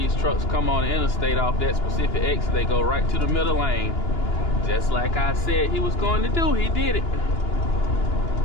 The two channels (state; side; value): late; right; 2.9 ms